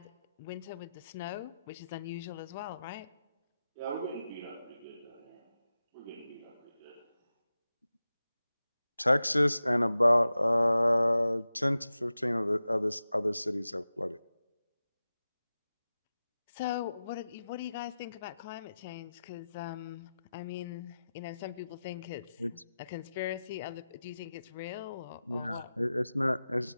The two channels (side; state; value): both; inverted; correlation -0.93